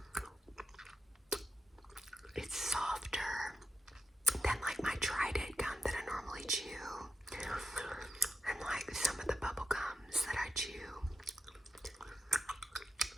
It's softer than like my Trident gum that I normally chew, and like some of the bubble gums that I chew.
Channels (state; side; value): normal; both; correlation 0.90